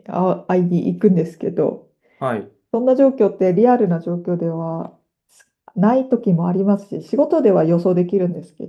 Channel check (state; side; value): identical; both; correlation 1.00